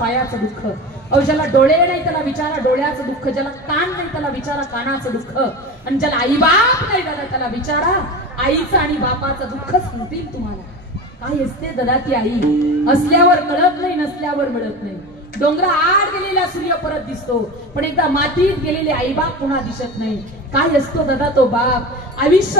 दुःख, अहो ज्याला डोळे नाही त्याला विचारा डोळ्याचं दुःख, ज्याला कान नाही त्याला विचारा कानाचं दुःख, आणि ज्याला आई बाप नाही दादा त्याला विचारा आईचं आणि बापाचं दुःख सांगतील तुम्हाला. काय असते दादा ती आई, असल्यावर कळत नाही, नसल्यावर मिळत नाही. डोंगरा आड गेलेला सूर्य परत दिसतो, पण एकदा मातीत गेलेले आई बाप पुन्हा दिसत नाही. काय असतो दादा तो बाप,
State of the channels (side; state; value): both; normal; correlation 0.29